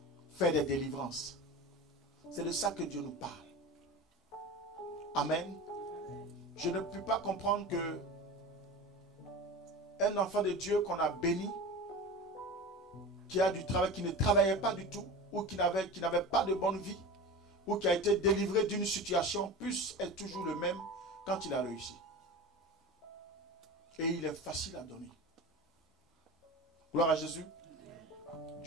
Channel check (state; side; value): normal; both; correlation 0.31